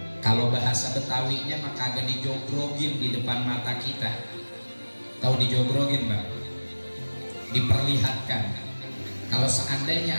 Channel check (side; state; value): both; inverted; correlation -1.00